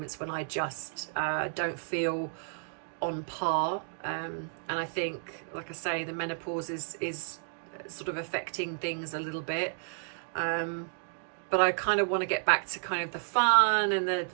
when I just don't feel on par. And I think, like I say, the menopause is sort of affecting things a little bit. But I kind of want to get back to kind of the fun and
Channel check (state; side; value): silent; left; 57 dB below the other